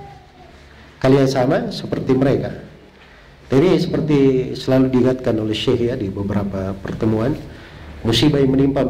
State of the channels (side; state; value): both; identical; correlation 1.00